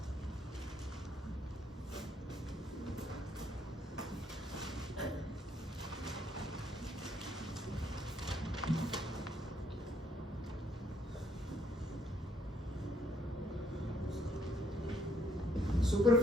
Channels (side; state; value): both; normal; correlation 0.68